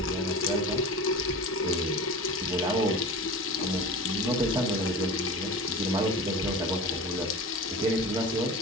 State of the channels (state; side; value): normal; both; correlation 0.33